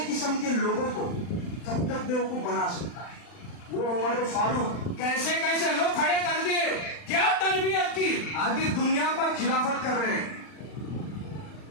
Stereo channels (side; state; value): right; late; 39 ms